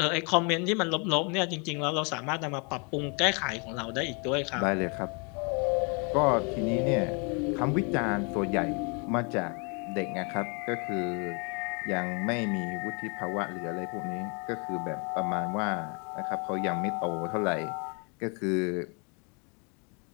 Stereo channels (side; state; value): right; quieter; 34.7 dB